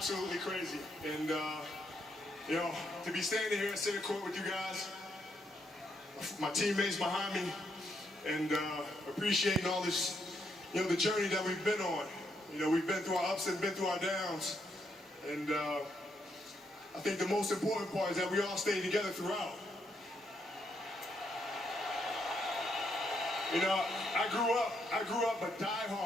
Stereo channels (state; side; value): normal; both; correlation 0.77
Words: crazy. And, you know, to be standing here at center court with you guys, my teammates behind me, and appreciating all this, you know, the journey that we've been on. You know, we've been through our ups and been through our downs. And, I think the most important part is that we all stayed together throughout. You know, I grew up a